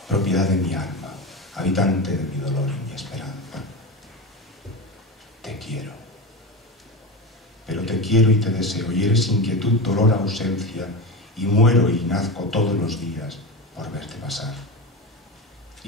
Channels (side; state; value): both; normal; correlation 0.21